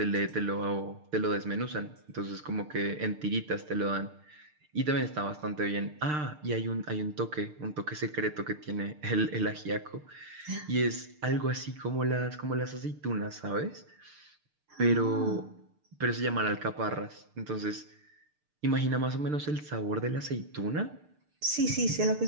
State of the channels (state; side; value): late; left; 6.6 ms